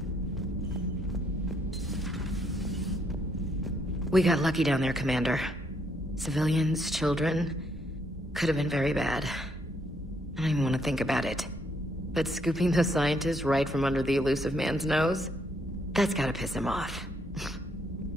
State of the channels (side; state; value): both; normal; correlation 0.72